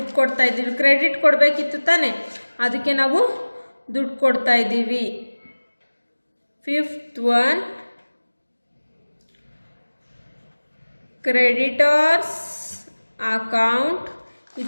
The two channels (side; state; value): both; inverted; correlation -1.00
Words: ಕೊಡ್ತಾ ಇದ್ದೀವಿ. ಕ್ರೆಡಿಟ್ ಕೊಡಬೇಕಿತ್ತು ತಾನೆ, ಅದಕ್ಕೆ ನಾವು ದುಡ್ಡು ಕೊಡ್ತಾ ಇದ್ದೀವಿ. Fifth one, creditors account.